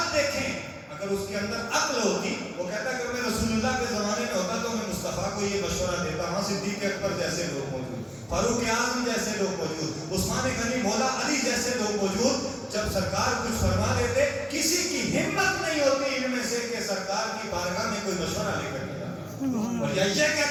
دیکھیں. اگر اس کے اندر عقل ہوتی وہ کہتا کہ میں رسول اللہ کے زمانے میں ہوتا تو میں مصطفیٰ کو یہ مشورہ دیتا. وہاں صدیق اکبر جیسے لوگ موجود، فاروق اعظم جیسے لوگ موجود، عثمان غنی، مولا علی جیسے لوگ موجود. جب سرکار کچھ فرما دیتے کسی کی ہمت نہیں ہوتی ان میں سے کہ سرکار کی بارگاہ میں کوئی مشورہ لے کر کے جاتا اور یہ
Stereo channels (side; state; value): both; identical; correlation 1.00